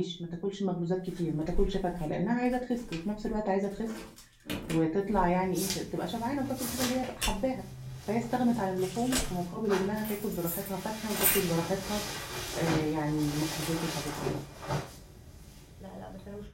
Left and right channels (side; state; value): both; identical; correlation 1.00